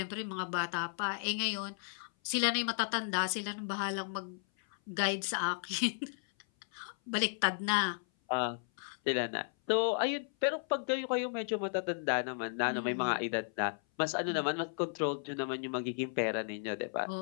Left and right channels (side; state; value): right; silent; 55 dB below the other